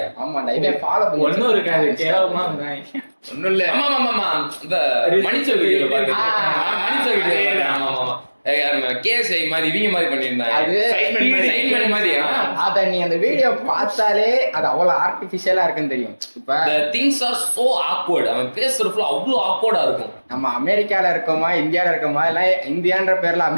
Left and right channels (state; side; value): inverted; both; correlation -1.00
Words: ஆமாண்டா, இவன் ஃபாலோ பண்ணி ஒண்ணும் இருக்காது, கேவலமா ஒண்ணும் இல்ல. ஆமா இந்த மணிச்சல் வீடியோல பாத்துட்டேன், மணிச்சல் வீடியோ. ஆமா கேஸ் மாதிரி இவங்க மாதிரி பண்ணிருந்தாங்க, அது சைன்மன் மாதிரி. அத நீ அந்த வீடியோ பார்த்தாலே அது அவ்வளவு ஆர்டிபிஷியலா இருக்குன்னு தெரியும். இப்ப the things are so awkward, அவன் பேசுறதுல அவ்வளவு ஆக்வர்டா இருக்கும். நம்ம அமெரிக்கால இருக்கோமா இந்தியால இருக்கோமா இல்ல இந்தியான்ற பேர்ல